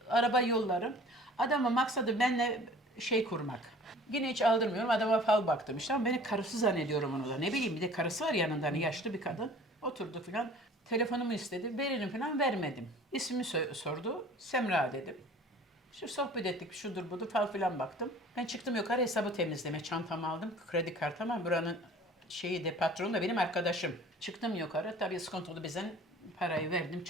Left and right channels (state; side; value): normal; both; correlation 0.47